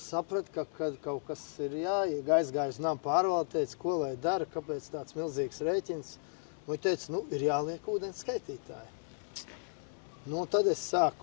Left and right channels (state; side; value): silent; right; digital silence